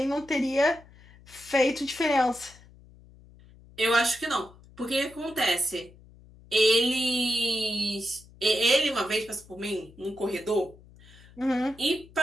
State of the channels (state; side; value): noise; left; hum, 24 dB below the sound